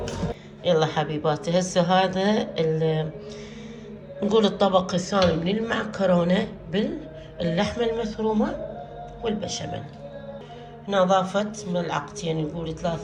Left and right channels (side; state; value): both; identical; correlation 1.00